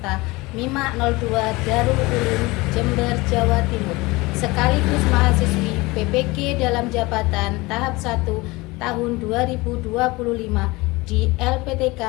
MIMA 02 Darul Ulum Jember, Jawa Timur. Sekaligus mahasiswi PPG dalam jabatan tahap 1 tahun 2025 di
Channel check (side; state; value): right; quieter; 22.6 dB